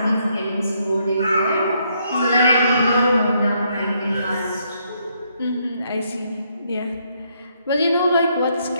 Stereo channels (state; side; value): inverted; both; correlation -0.73